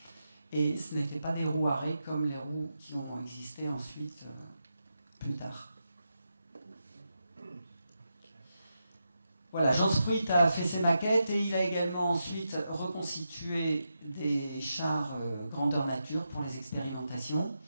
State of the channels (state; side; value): inverted; both; correlation -0.86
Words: Et ce n'étaient pas des roues à raies comme les roues qui ont existé ensuite, plus tard. Voilà, Jean Spruit a fait ses maquettes et il a également ensuite reconstitué des chars grandeur nature pour les expérimentations.